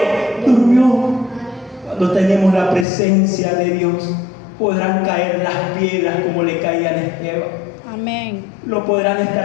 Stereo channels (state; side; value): drops out; right; at 2.9 s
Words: durmió. Cuando tenemos la presencia de Dios, podrán caer las piedras como le caían a Esteban. Amén. Lo podrán